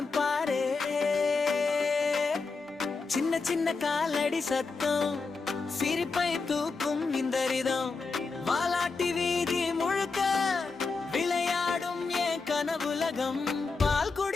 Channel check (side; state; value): right; quieter; 4.3 dB